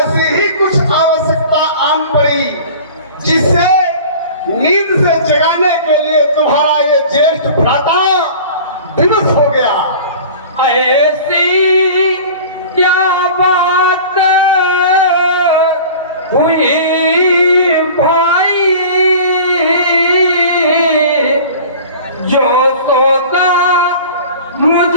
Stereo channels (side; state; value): both; inverted; correlation -0.41